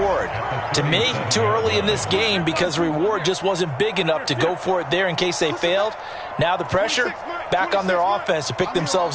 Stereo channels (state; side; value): identical; both; correlation 1.00